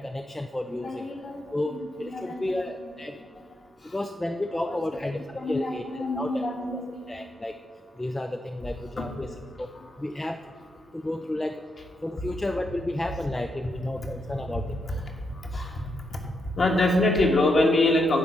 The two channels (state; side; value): normal; both; correlation 0.82